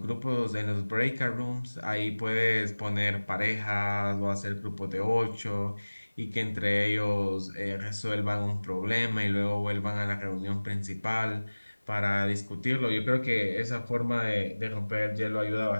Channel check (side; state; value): both; inverted; correlation -1.00